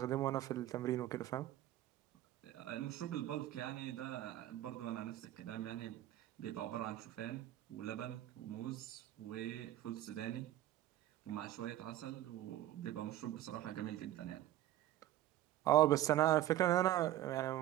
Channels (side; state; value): left; quieter; 13.9 dB